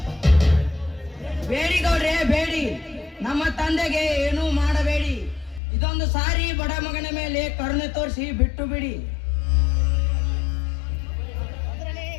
ಬೇಡಿ ಗೌಡ್ರೆ ಬೇಡಿ, ನಮ್ಮ ತಂದೆಗೆ ಏನೂ ಮಾಡಬೇಡಿ. ಇದೊಂದು ಸಾರಿ ಬಡ ಮಗನ ಮೇಲೆ ಕರುಣೆ ತೋರಿಸಿ ಬಿಟ್ಟು ಬಿಡಿ.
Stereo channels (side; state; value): right; drops out; at 5.6 s